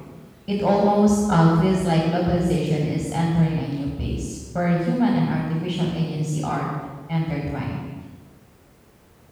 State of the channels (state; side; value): identical; both; correlation 1.00